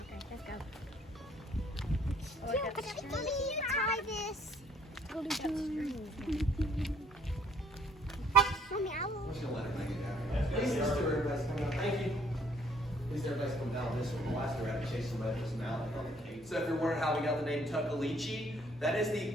Okay, let's go. Let me try this. Mommy, I will. I'm just gonna let her make it happen. Please, everybody's coming out. Thank you. Please, everybody's coming down this one. The last year I had to chase somebody this mountain on the cave. So if you're wondering how we got the name Tuckaleechee, that is the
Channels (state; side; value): normal; both; correlation 0.62